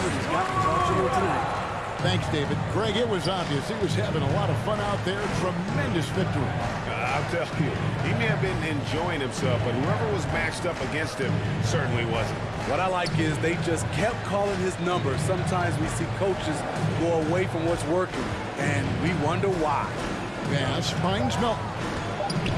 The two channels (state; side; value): identical; both; correlation 1.00